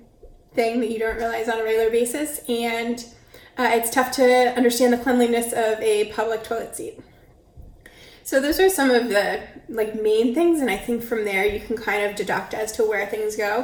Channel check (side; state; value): both; identical; correlation 1.00